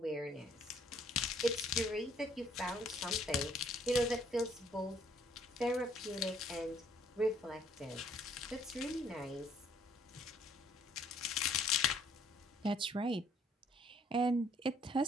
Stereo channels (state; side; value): normal; both; correlation 0.63